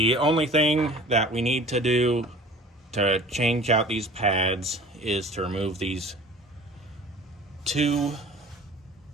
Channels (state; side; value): normal; both; correlation 0.44